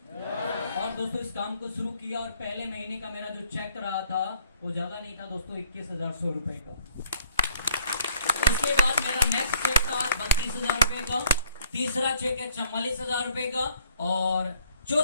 और दोस्तों इस काम को शुरू किया और पहले महीने का मेरा जो चेक रहा था वो ज्यादा नहीं था दोस्तों, 21,100 रुपए का। उसके बाद मेरा नेक्स्ट चेक था 32,000 रुपए का, तीसरा चेक है 44,000 रुपए का, और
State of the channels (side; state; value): both; inverted; correlation -0.61